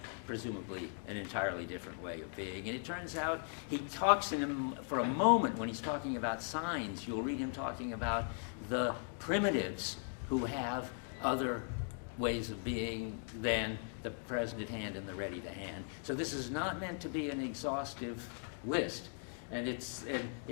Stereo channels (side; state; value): right; silent; 52 dB below the other